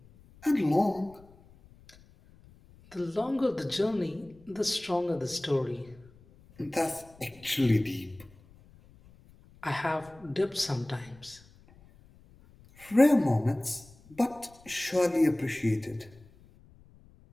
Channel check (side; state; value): left; noise; rumble, 25 dB below the sound